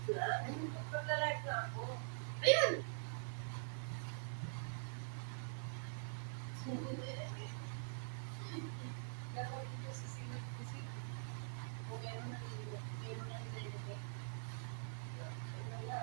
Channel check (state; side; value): silent; left; digital silence